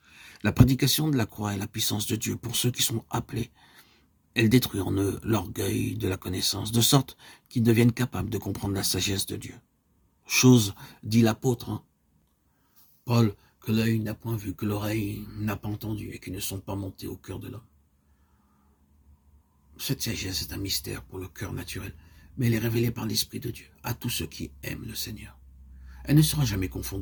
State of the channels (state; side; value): identical; both; correlation 1.00